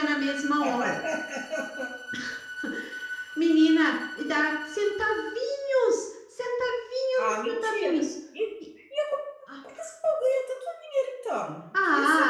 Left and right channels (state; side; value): identical; both; correlation 1.00